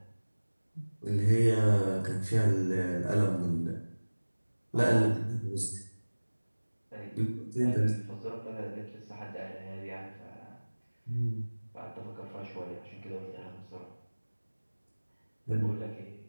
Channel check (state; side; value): inverted; both; correlation -1.00